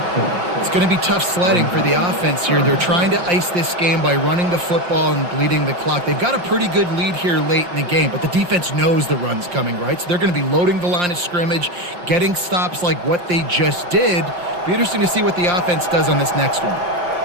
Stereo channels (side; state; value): left; late; 5.7 ms